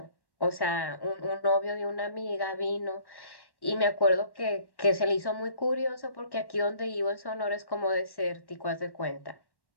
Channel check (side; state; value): right; late; 1.1 ms